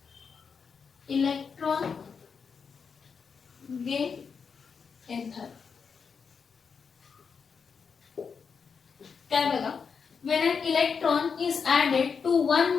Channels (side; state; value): right; quieter; 5.9 dB